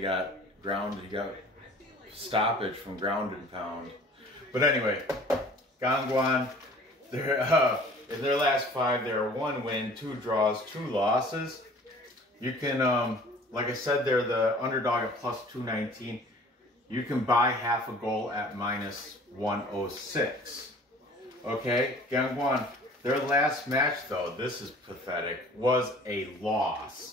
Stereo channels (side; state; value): both; normal; correlation 0.48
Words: got grounded. He got stoppage from ground and pound. But anyway, Gangwon. In their last 5, they're 1 win, 2 draws, 2 losses. You can, like I said, they're the underdog at plus 219. You can buy half a goal at minus 106. Okay, Gangwon, their last match, though, this is pathetic, was a